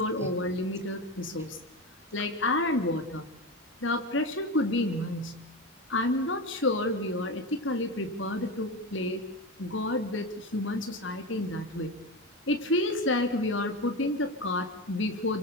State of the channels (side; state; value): both; normal; correlation 0.20